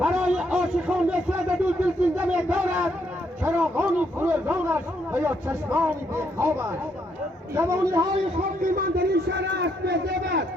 عاشقان نصرت دو دلسوزنده دارد چراغانی فروزانش و یا چشمانی بیخوابش جوانی های خاکی من در این شهر است بزبد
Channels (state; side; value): normal; both; correlation 0.74